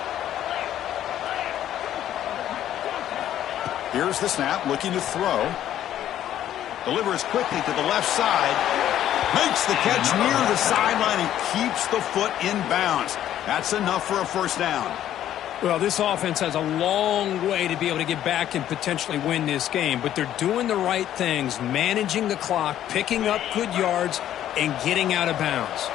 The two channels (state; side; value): quieter; right; 11.6 dB